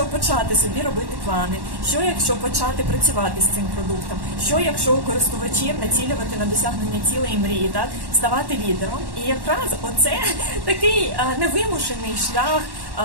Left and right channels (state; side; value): late; left; 1.1 ms